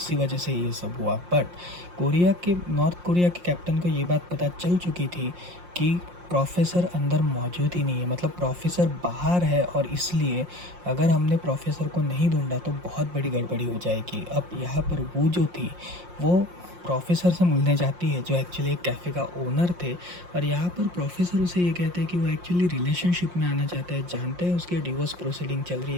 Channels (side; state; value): left; late; 5.6 ms